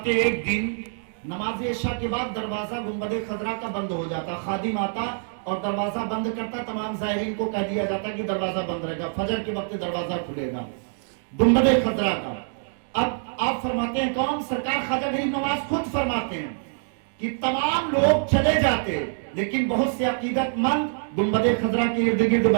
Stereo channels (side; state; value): left; silent; digital silence